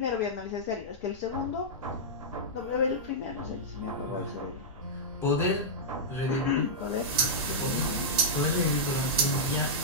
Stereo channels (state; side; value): noise; left; rumble, 19 dB below the sound